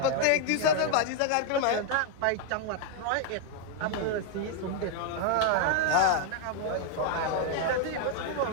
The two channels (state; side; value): different; both; correlation 0.00